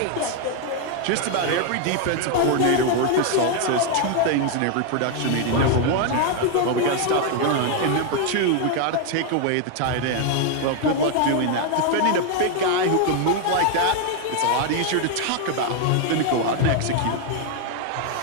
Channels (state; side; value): different; both; correlation 0.01